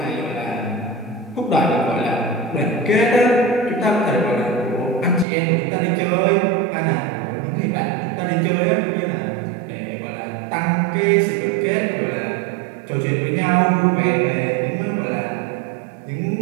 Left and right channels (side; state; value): left; drops out; at 5.2 s